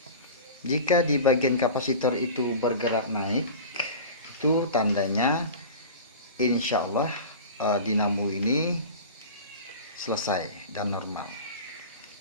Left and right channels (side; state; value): both; inverted; correlation -0.34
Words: Jika di bagian kapasitor itu bergerak naik, itu tandanya insya Allah dinamo ini selesai dan normal.